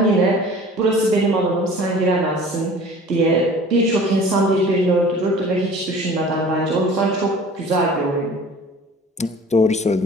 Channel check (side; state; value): both; normal; correlation 0.45